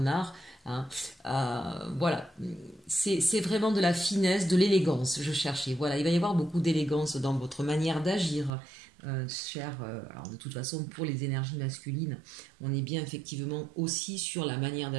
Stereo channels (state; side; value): drops out; left; at 8.5 s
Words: Voilà, c'est vraiment de la finesse, de l'élégance, je cherchais. Voilà, il va y avoir beaucoup d'élégance dans votre manière d'agir. Alors de toute façon, pour les énergies masculines, on est bien effectivement aussi sur la manière